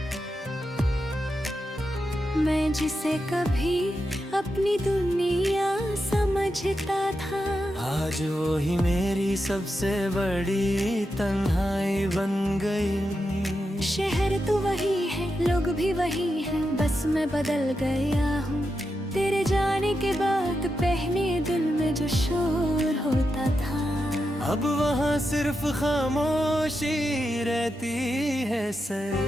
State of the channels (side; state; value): both; normal; correlation 0.87